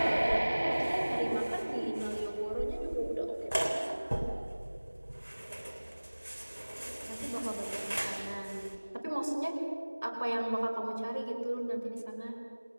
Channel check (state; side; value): inverted; both; correlation -1.00